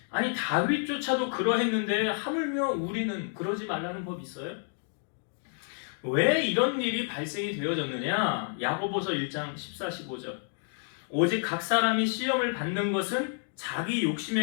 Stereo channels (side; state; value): right; silent; 55 dB below the other